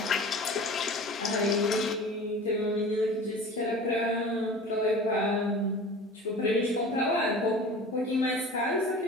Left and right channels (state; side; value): normal; both; correlation 0.39